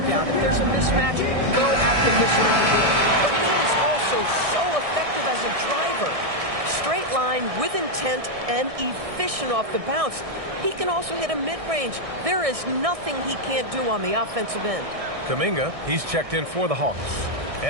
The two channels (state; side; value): late; left; 1.6 ms